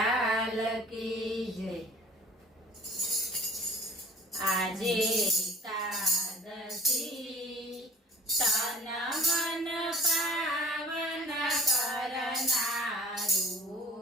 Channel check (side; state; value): both; normal; correlation 0.49